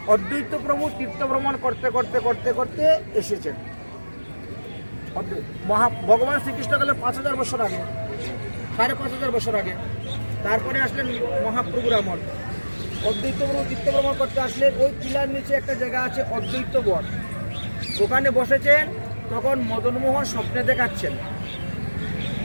অদ্বৈত প্রভু তীর্থ ভ্রমণ করতে করতে করতে করতে এসেছেন। ভগবান শ্রীকৃষ্ণ গেলে 5000 বছর আগে, 5500 বছর আগে। তারপরে আসলেন মহাপ্রভুর আমল। অদ্বৈত প্রভু তীর্থ ভ্রমণ করতে আসলেন। ওই টিলার নিচে একটা জায়গা আছে অদ্বৈত বন, ওখানে বসেছেন। তখন মদনমোহন স্বপ্নে দেখাচ্ছেন,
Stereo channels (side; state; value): both; inverted; correlation -1.00